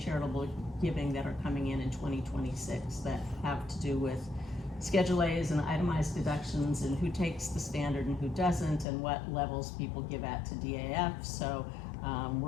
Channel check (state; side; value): drops out; right; at 8.8 s